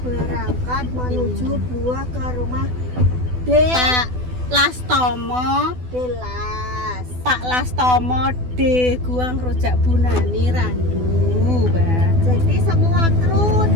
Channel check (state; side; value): late; left; 12 ms